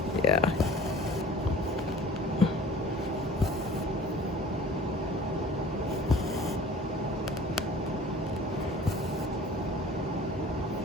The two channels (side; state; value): both; normal; correlation 0.46